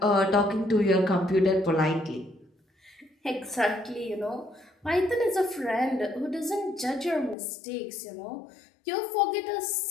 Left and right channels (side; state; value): right; drops out; at 7.4 s